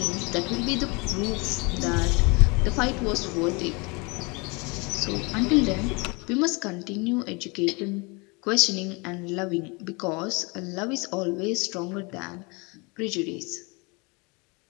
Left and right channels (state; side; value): quieter; right; 28.9 dB